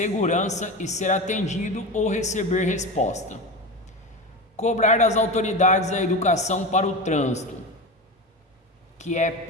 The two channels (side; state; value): both; normal; correlation 0.24